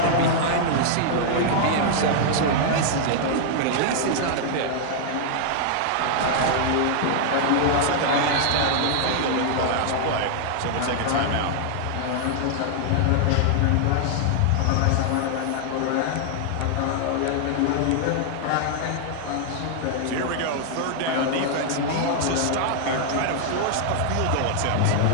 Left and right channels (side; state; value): both; different; correlation -0.01